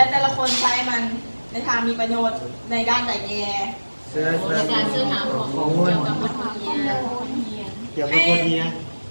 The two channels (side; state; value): both; inverted; correlation -1.00